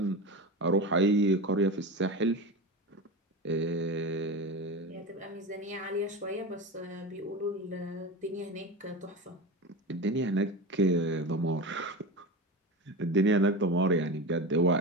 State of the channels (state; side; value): normal; both; correlation 0.25